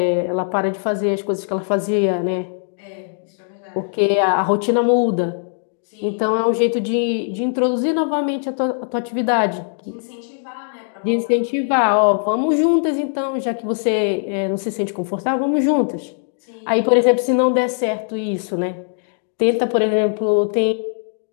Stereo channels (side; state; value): right; silent; digital silence